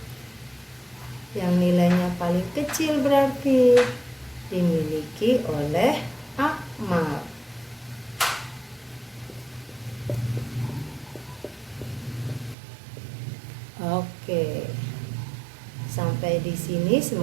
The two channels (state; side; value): drops out; left; at 12.6 s